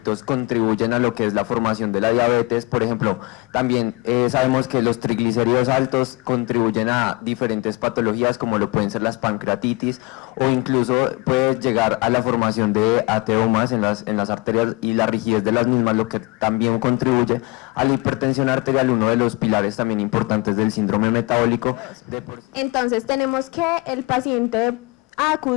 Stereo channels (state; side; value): quieter; right; 24.4 dB